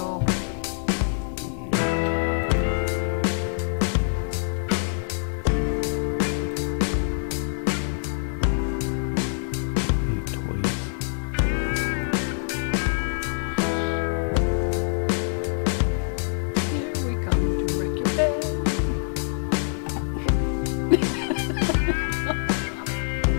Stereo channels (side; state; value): right; silent; digital silence